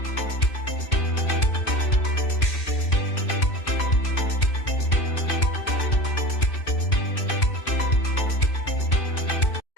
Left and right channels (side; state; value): right; late; 2.5 ms